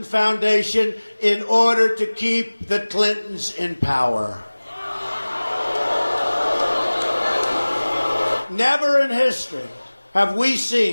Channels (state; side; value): inverted; both; correlation -1.00